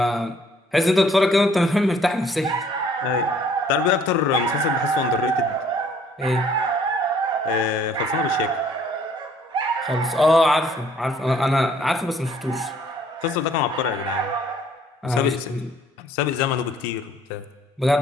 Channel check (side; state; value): both; normal; correlation 0.60